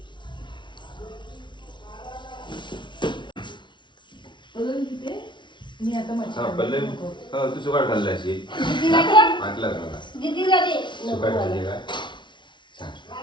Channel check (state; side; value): late; right; 0.23 ms